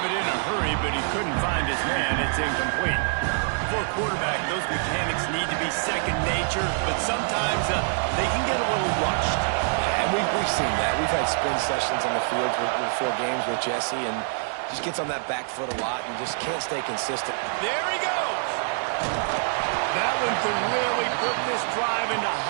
it in a hurry, but he couldn't find his man. It's incomplete. For a quarterback, those mechanics need to be second nature, but sometimes they can get a little rushed. Yeah, and we've seen that. We've had spin sessions on the field before games with Jesse, and just gets on that back foot a lot and just can't stay consistent. There he goes. That one could really put this drive into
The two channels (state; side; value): silent; left; digital silence